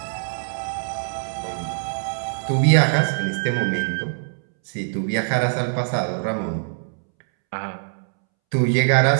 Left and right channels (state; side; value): silent; left; 64 dB below the other